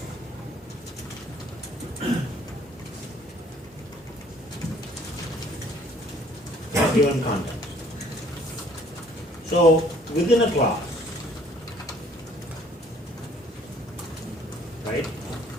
Given context. So within a class, right,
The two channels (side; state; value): both; normal; correlation 0.58